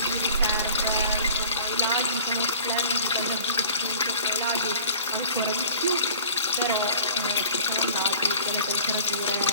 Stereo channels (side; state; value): both; inverted; correlation -0.47